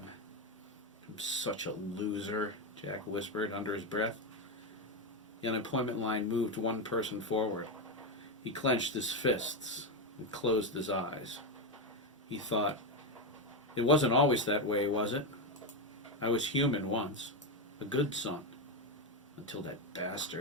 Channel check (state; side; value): normal; both; correlation 0.09